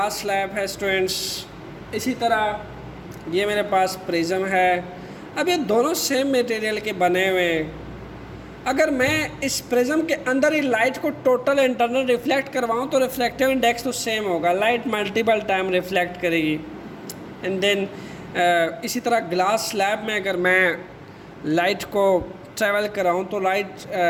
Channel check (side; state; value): both; identical; correlation 1.00